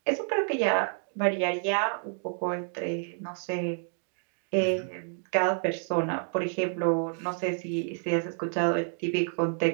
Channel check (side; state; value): left; silent; 55 dB below the other